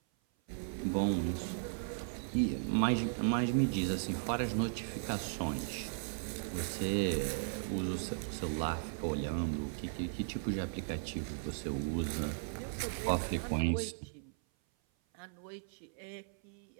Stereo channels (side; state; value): left; silent; 53 dB below the other